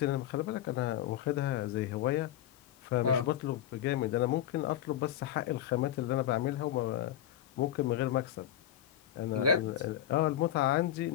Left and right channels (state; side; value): quieter; right; 11.2 dB